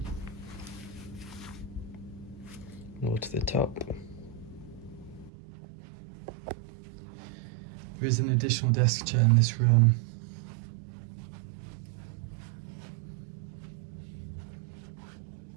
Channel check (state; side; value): drops out; left; at 5.3 s